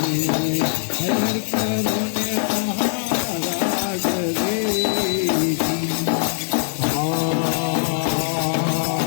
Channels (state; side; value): silent; right; digital silence